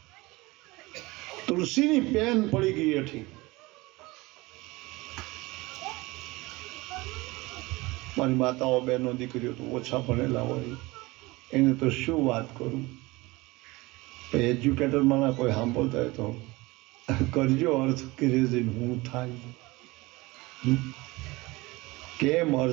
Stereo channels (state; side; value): quieter; left; 22.0 dB